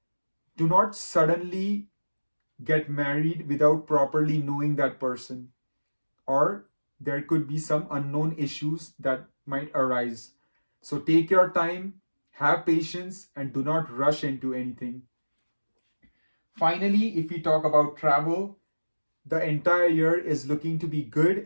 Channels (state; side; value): inverted; both; correlation -1.00